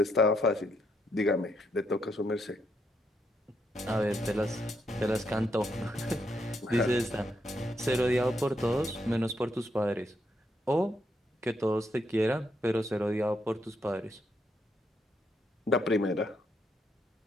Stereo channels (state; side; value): normal; both; correlation 0.77